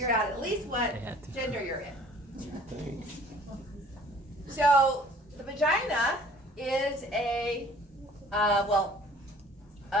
out at least what gender you're in. So the vagina is a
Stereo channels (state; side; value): normal; both; correlation 0.52